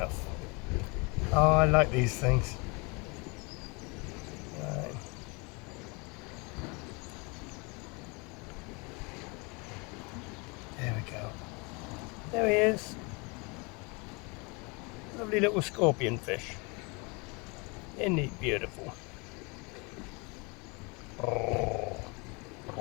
Oh, I like these things. Right. There we go. There he is. Lovely little scorpion fish. Isn't he beautiful? Oh.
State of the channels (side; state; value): right; quieter; 29.5 dB